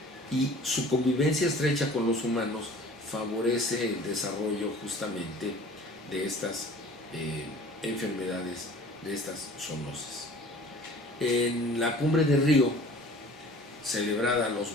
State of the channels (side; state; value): both; normal; correlation 0.47